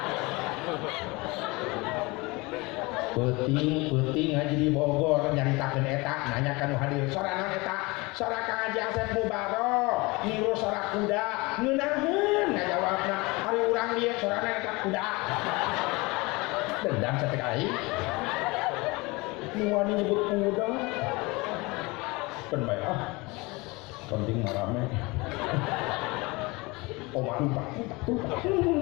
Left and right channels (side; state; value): right; quieter; 24.6 dB